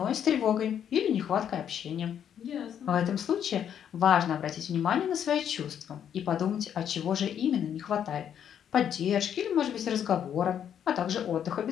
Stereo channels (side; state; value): right; quieter; 9.1 dB